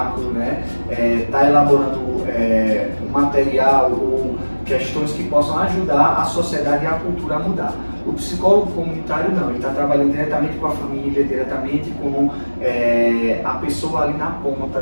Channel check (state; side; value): inverted; both; correlation -1.00